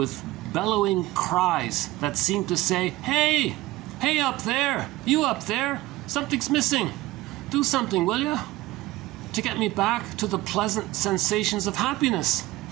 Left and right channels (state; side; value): quieter; left; 18.1 dB